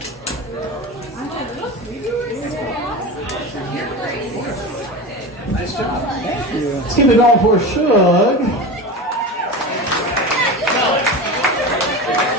Nice job. Thank you. Let's keep it going for Shug.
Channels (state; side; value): normal; both; correlation 0.27